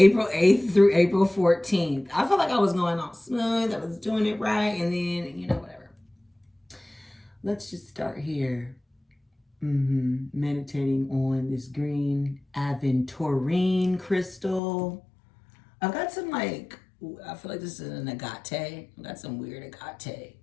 8th through April 14th. I felt like I was going all smooth, I was doing it right, and then, whatever. Let's just start here. Meditating on this green aventurine crystal. I've got some I feel like this is an agate. I've got some weird agate.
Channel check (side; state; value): right; drops out; at 14.6 s